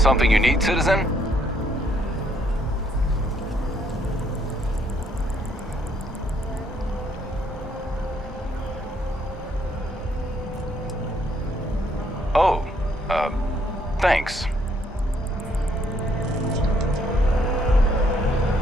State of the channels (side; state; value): both; normal; correlation 0.69